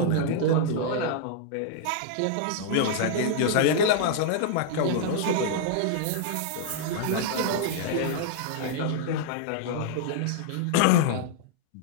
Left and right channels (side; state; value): both; different; correlation -0.01